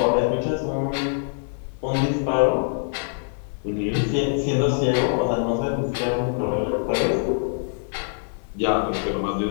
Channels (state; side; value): silent; right; digital silence